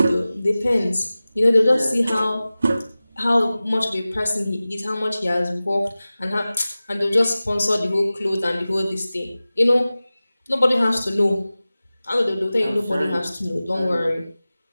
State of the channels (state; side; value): inverted; both; correlation -0.97